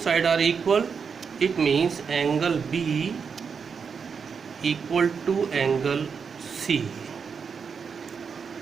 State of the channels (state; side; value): quieter; left; 6.0 dB